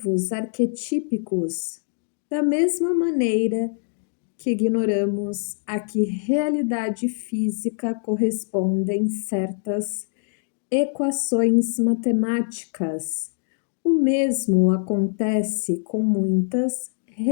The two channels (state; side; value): silent; right; digital silence